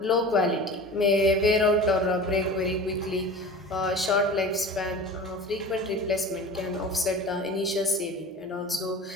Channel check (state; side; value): normal; both; correlation 0.36